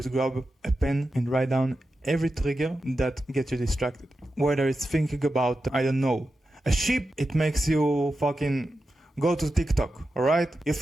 grab a pen and write down every trigger that gets you distracted. Whether it's thinking about, I don't know, a sheep, it makes you fucking go to TikTok, alright? You're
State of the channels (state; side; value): normal; both; correlation 0.90